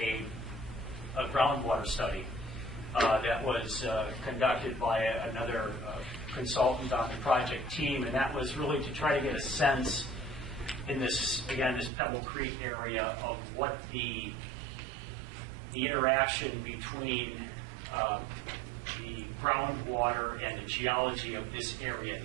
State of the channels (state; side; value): drops out; left; at 11.9 s